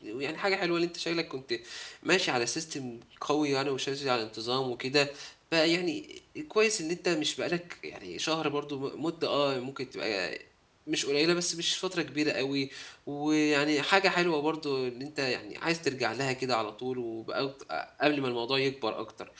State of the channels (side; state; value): both; identical; correlation 1.00